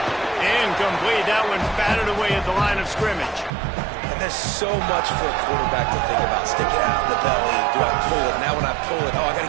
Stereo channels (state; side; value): drops out; left; at 3.5 s